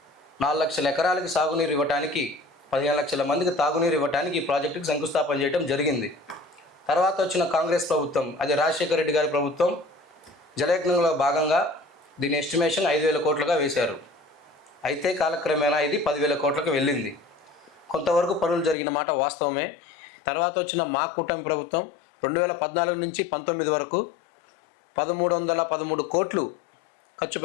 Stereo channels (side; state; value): right; drops out; at 18.8 s